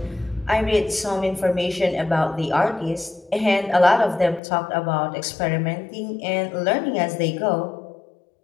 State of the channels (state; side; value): drops out; right; at 4.4 s